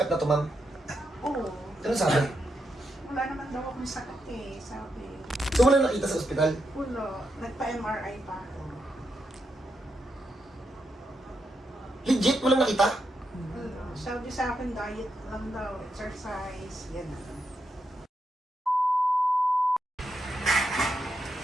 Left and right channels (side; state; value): both; normal; correlation 0.83